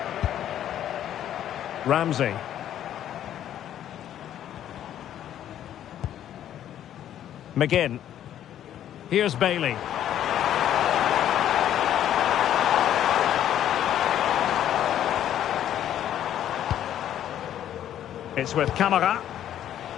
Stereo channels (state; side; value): quieter; right; 11.0 dB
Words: Ramsey. McGinn. Here's Bailey. It's with Camara.